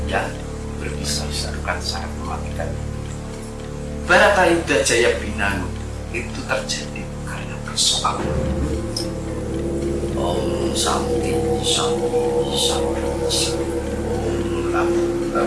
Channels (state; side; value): identical; both; correlation 1.00